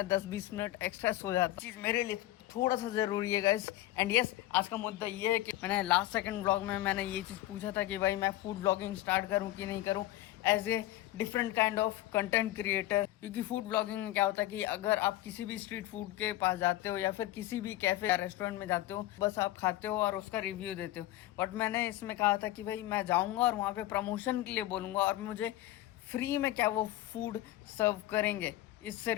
10-20 मिनट एक्स्ट्रा सो जाता हूँ। चीज़ मेरे लिए थोड़ा सा ज़रूरी है गाइस। एंड यस, आज का मुद्दा ये है कि मैंने लास्ट सेकंड ब्लॉग में मैंने ये चीज़ पूछा था कि भाई मैं फूड ब्लॉगिंग स्टार्ट करूं कि नहीं करूं as a different kind of content creator. क्योंकि फूड ब्लॉगिंग में क्या होता है कि अगर आप किसी भी स्ट्रीट फूड के पास जाते हो या फिर किसी भी कैफे या रेस्टोरेंट में जाते हो, बस आप खाते हो और उसका रिव्यू देते हो। बट मैंने इसमें कहा था कि भाई मैं जाऊँगा और वहाँ पर प्रमोशन के लिए बोलूँगा और मुझे फ्री में क्या वो फूड सर्व करेंगे। इससे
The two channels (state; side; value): quieter; right; 15.3 dB